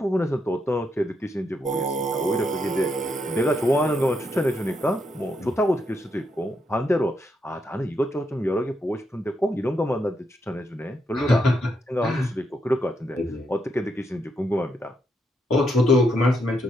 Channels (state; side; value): normal; both; correlation 0.79